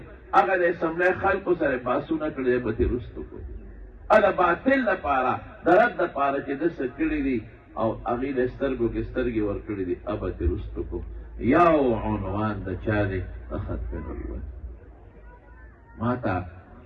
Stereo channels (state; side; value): identical; both; correlation 1.00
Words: هغه د اسمبلی خلکو سره بحثونه کړي دی به درستو کړو د باطل دپاره د رد دپاره چې ده څه کړي دي او هغې د سترګو کې سترګې ورکړي دي به درستو کړو یو عنوان د چا دی د ختم نبوت ما ته